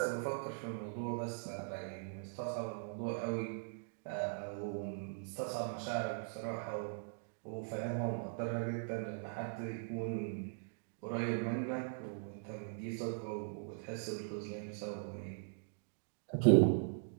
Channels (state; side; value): silent; left; digital silence